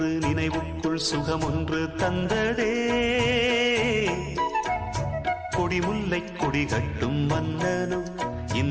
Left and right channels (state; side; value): identical; both; correlation 1.00